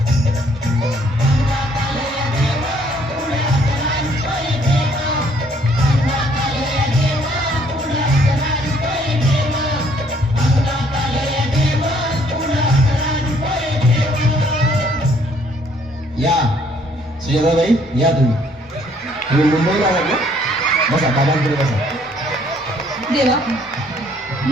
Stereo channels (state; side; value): normal; both; correlation 0.64